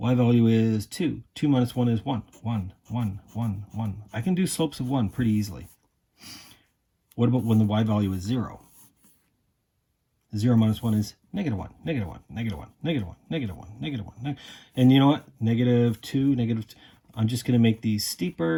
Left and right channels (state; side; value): identical; both; correlation 1.00